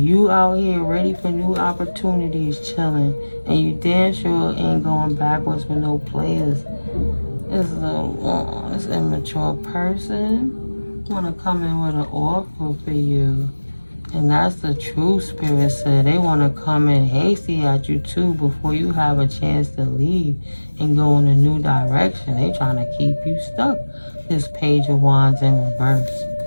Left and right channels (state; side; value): inverted; both; correlation -1.00